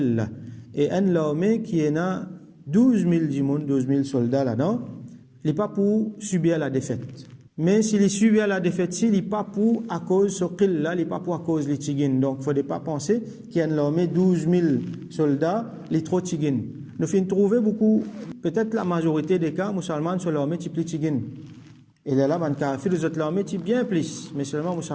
Et une armée qui est 12 000 soldats là-dedans, il n'est pas pour subir la défaite. Mais s'il est suivi à la défaite, il n'est pas pour à cause de ce qu'il-là, il n'est pas pour à cause des tigines. Donc, il ne faudrait pas penser qu'il y a une armée 12 000 soldats, les trop tigines. Nous finissons trouver beaucoup, peut-être la majorité des cas, musulmans sur l'armée type les tigines. Et là, ben, kafir, les autres l'armée type bien plus, mais seulement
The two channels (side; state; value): both; identical; correlation 1.00